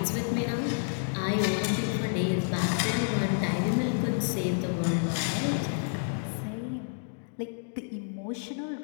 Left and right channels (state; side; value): silent; right; digital silence